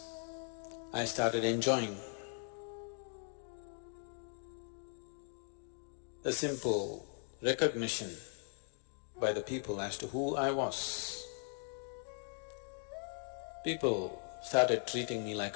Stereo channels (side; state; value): right; silent; 52 dB below the other